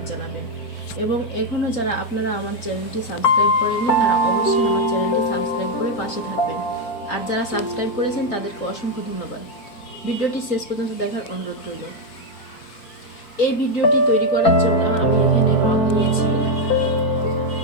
জানাবেন। এবং এখনো যারা আপনারা আমার চ্যানেলটি সাবস্ক্রাইব করেননি তারা অবশ্যই আমার চ্যানেলটি সাবস্ক্রাইব করে পাশে থাকবেন। আর যারা সাবস্ক্রাইব করেছেন তাদেরকে অসংখ্য ধন্যবাদ। ভিডিওটি শেষ পর্যন্ত দেখার অনুরোধ রইল। এই ভিডিওটি তৈরি করার জন্য আমি এখানে রং নিয়েছি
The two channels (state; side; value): late; right; 4.5 ms